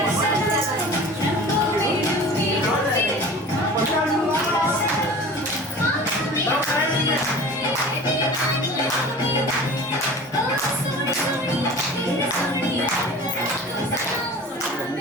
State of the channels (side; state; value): both; normal; correlation 0.39